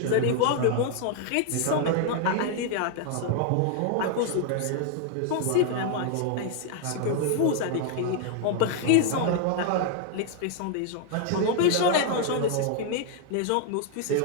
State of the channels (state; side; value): different; both; correlation 0.00